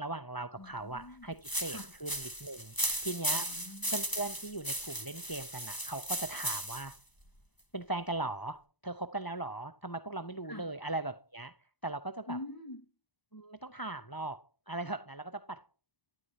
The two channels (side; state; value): right; late; 1.0 ms